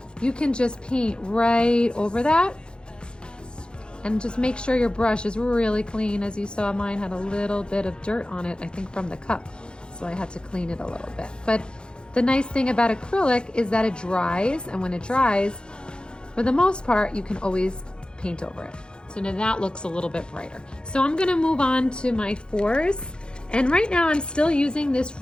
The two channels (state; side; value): late; right; 0.050 ms